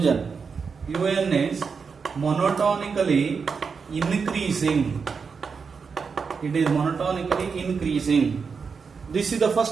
Un is monotonically increasing. It is monotonically increasing. This is the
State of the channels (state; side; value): quieter; left; 5.5 dB